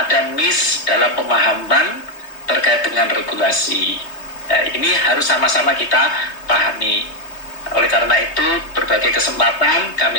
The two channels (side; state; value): right; late; 3.2 ms